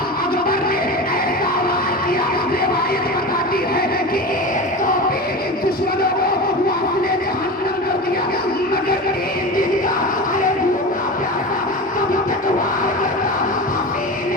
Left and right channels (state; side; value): normal; both; correlation 0.27